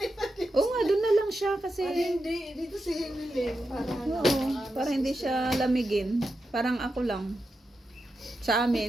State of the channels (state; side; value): normal; both; correlation 0.88